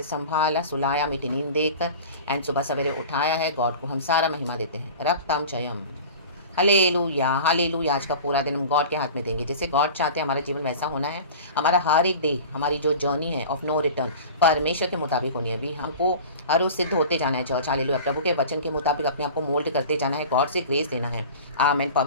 संभाला, सुलाया, मीठी नींद देकर एंड सुबह सवेरे उठाया है। गॉड को हम सारा महिमा देते हैं। रक्तम जयम। Hallelujah hallelujah. आज का पूरा दिन हम गॉड के हाथ में देंगे। जैसे गॉड चाहते हैं हमारा जीवन वैसा होना है। हमारा हर एक डे, हमारी जो जर्नी है ऑफ नो रिटर्न, परमेश्वर के मुताबिक होनी है। अभी हमको हर रोज सिद्ध होते जाना है। Church hallelujah. प्रभु के वचन के मुताबिक अपने आप को मोल्ड करते जाना है। गॉड से ग्रेस लेना है। आमीन।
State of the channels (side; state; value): both; inverted; correlation -0.38